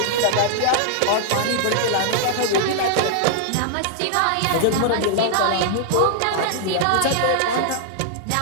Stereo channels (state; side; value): different; both; correlation -0.01